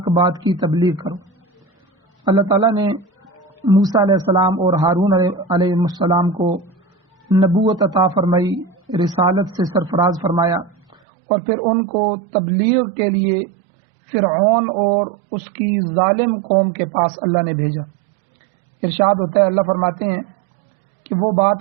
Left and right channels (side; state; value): left; drops out; at 11.0 s